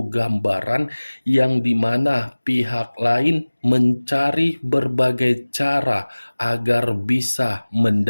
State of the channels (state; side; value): inverted; both; correlation -1.00